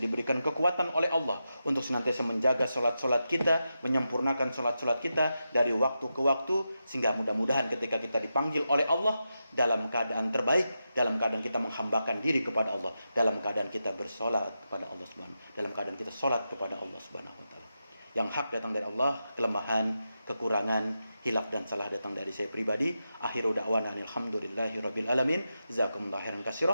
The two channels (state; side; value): inverted; both; correlation -0.88